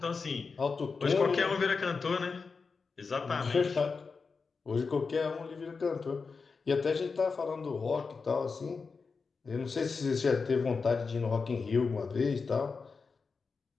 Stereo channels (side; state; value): right; quieter; 4.8 dB